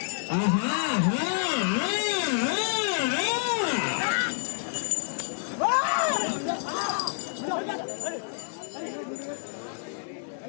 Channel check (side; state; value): right; silent; 59 dB below the other